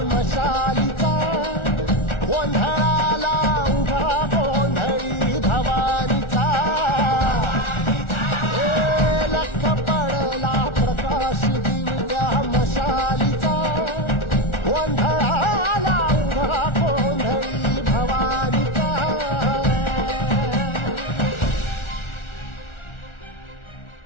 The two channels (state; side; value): late; right; 1.4 ms